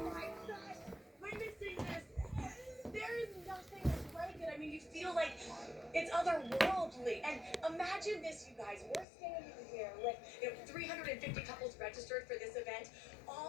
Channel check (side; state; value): right; drops out; at 9.1 s